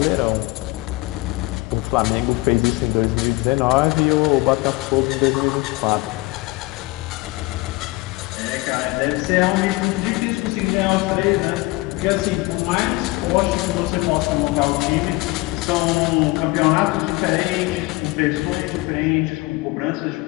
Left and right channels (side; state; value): right; quieter; 22.2 dB